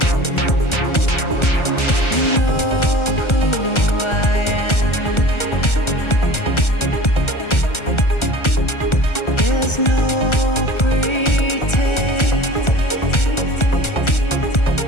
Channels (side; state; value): right; late; 1.3 ms